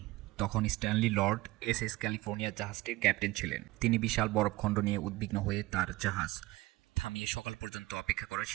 তখন স্ট্যানলি লর্ড এসএস ক্যালিফোর্নিয়া জাহাজটির ক্যাপ্টেন ছিলেন। তিনি বিশাল বরফখণ্ড নিয়ে উদ্বিগ্ন হয়ে তার জাহাজ থামিয়ে সকাল পর্যন্ত অপেক্ষা করার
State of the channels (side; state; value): left; quieter; 19.5 dB